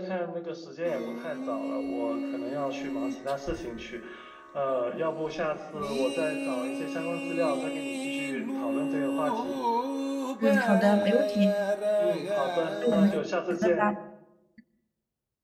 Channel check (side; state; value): both; identical; correlation 1.00